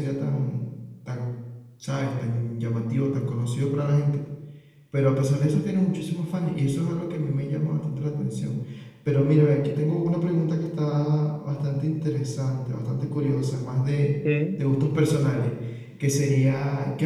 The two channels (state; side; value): identical; both; correlation 1.00